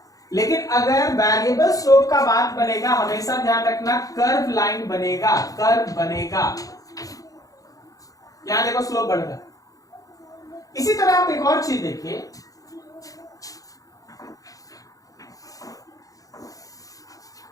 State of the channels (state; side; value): late; right; 0.17 ms